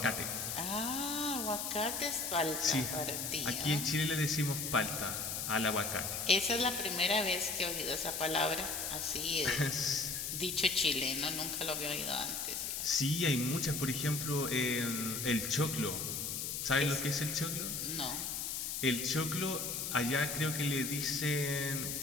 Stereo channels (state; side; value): noise; left; hiss, 3 dB below the sound